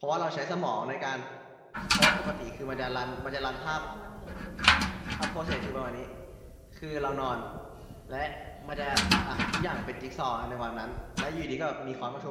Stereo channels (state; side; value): identical; both; correlation 1.00